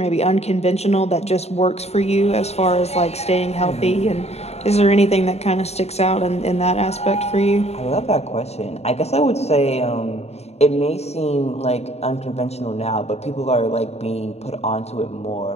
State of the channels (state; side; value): late; right; 0.31 ms